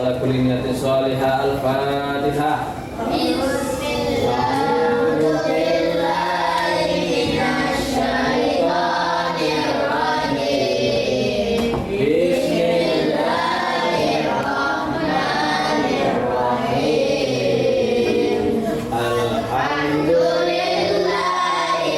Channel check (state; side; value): identical; both; correlation 1.00